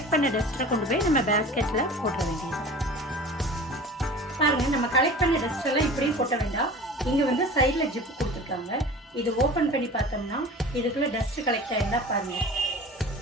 பண்ண டஸ்ட்டை கொண்டு போய் நம்ம பேஸ்கெட்டில் போட்ட வேண்டியது. பாருங்க, நம்ம கலெக்ட் பண்ண டஸ்ட் எல்லாம் இப்படியும் கொட்ட வேண்டாம். இங்க வந்து சைட்ல ஜிப் கொடுத்துருக்காங்க. இது ஓபன் பண்ணி பார்த்தோம்னா இதுக்குள்ள டஸ்ட் கலெக்ட் ஆயிருந்தா பாருங்க,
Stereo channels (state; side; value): normal; both; correlation 0.39